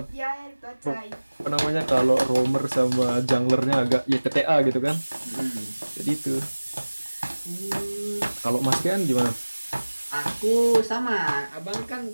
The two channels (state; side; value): inverted; both; correlation -1.00